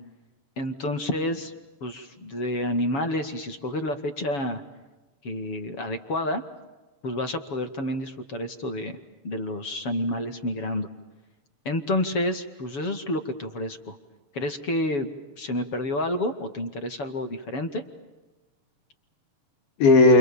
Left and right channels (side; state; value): right; late; 7.1 ms